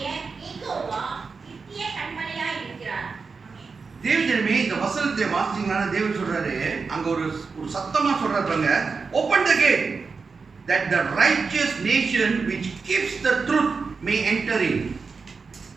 யெகோவா நித்திய கண்மலையாய் இருக்கிறார். தேவஜனமே, இந்த வசனத்தை வாசிச்சீங்கன்னா தேவன் சொல்றாரு, அங்க ஒரு சத்தமா சொல்றாங்க, open the gate that the righteous nation which keeps the truth may enter in.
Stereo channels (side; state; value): left; quieter; 4.8 dB